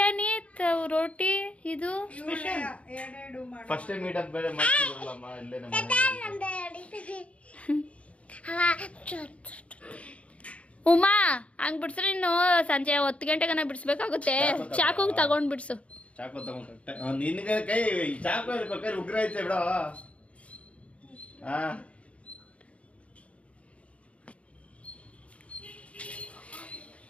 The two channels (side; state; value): right; late; 0.063 ms